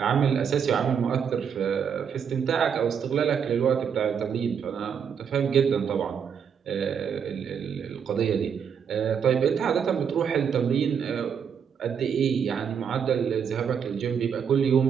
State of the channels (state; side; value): quieter; left; 7.3 dB